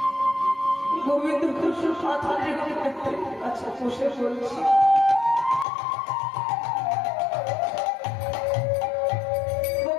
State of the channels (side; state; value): right; drops out; at 5.7 s